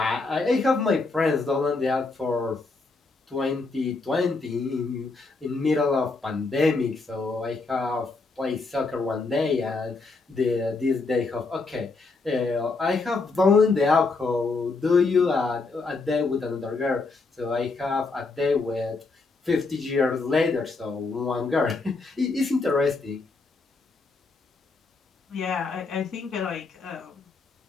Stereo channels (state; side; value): quieter; right; 3.8 dB